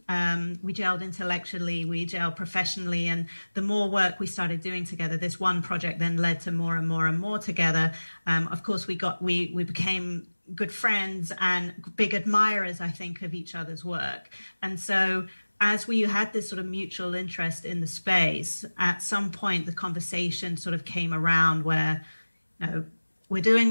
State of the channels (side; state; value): both; inverted; correlation -1.00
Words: We gelled intellectually, we gelled professionally, and the more work we started doing together, this one project then led to more and more and more together. Of course, we became good friends and big admirers, I think, of each other's work. And so as we had this sort of mutual interest in the space, at some point the conversation sort of came around where, you know, we're doing